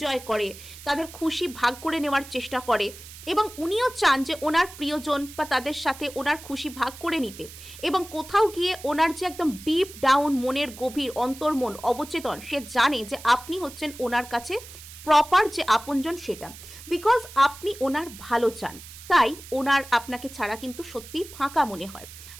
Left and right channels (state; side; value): noise; right; hiss, 16 dB below the sound